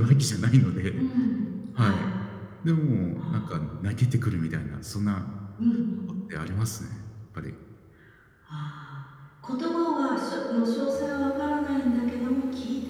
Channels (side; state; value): both; identical; correlation 1.00